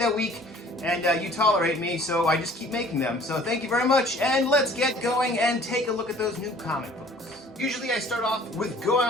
week. And you tolerate me, so I just keep making them. So thank you very much, and let's get going and take a look at those new comic books. Usually I start off with going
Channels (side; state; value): both; normal; correlation 0.52